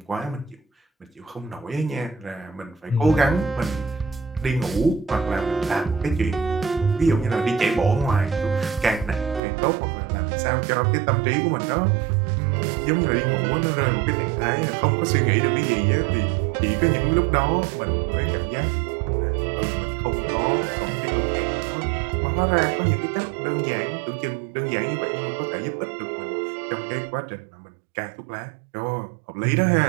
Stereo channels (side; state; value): left; drops out; at 9.4 s